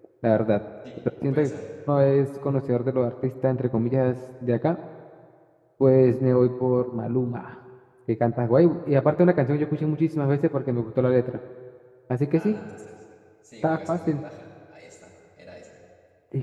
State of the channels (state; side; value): identical; both; correlation 1.00